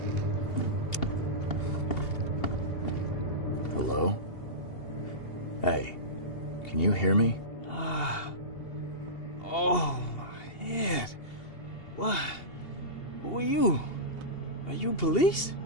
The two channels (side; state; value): right; late; 2.8 ms